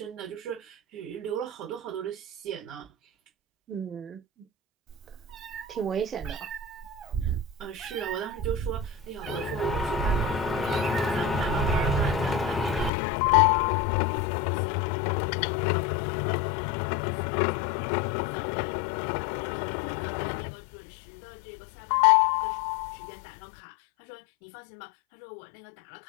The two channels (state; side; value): drops out; right; at 12.9 s